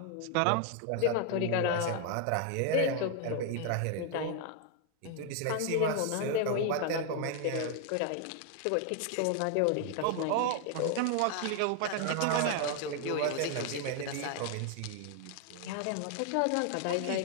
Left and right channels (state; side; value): different; both; correlation 0.00